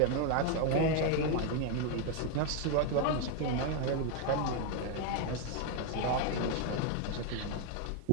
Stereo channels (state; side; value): different; both; correlation 0.01